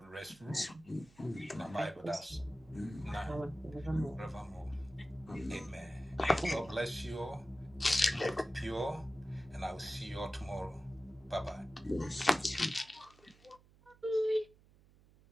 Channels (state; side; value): noise; right; hum, 26 dB below the sound